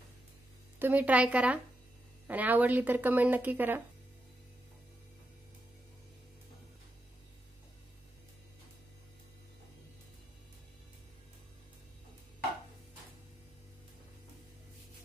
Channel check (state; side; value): normal; both; correlation 0.85